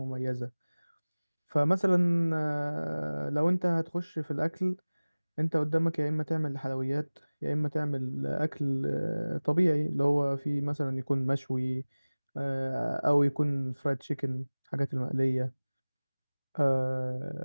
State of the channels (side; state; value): both; inverted; correlation -1.00